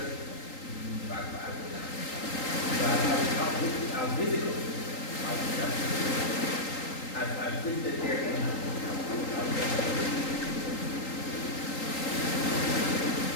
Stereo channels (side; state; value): right; late; 3.8 ms